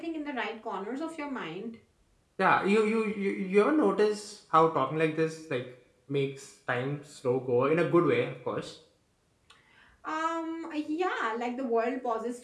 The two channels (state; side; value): identical; both; correlation 1.00